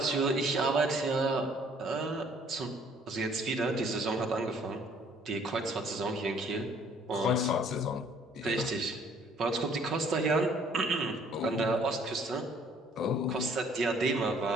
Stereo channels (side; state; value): both; normal; correlation 0.59